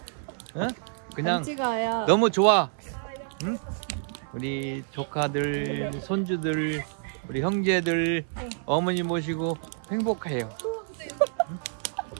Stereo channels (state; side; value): silent; left; 59 dB below the other